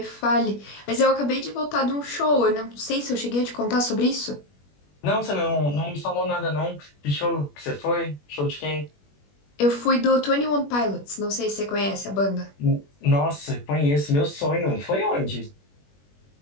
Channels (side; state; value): right; late; 21 ms